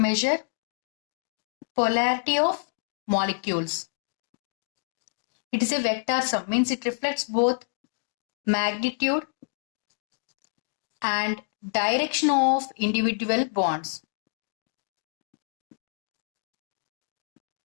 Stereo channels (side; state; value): right; silent; digital silence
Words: polarity of molecules. It is a vector sum, means it reflects both magnitude and direction of individual bonds.